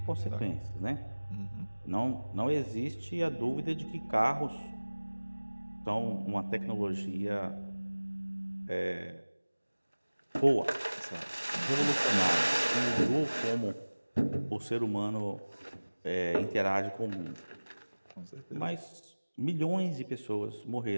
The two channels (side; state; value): both; inverted; correlation -1.00